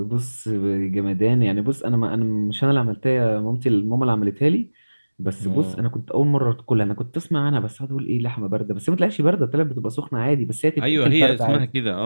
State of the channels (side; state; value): both; inverted; correlation -1.00